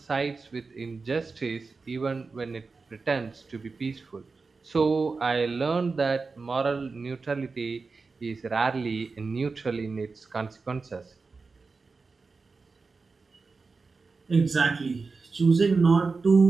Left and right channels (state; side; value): quieter; left; 4.3 dB